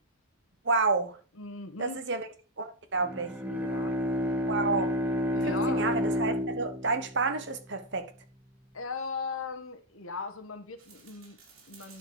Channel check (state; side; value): normal; both; correlation -0.02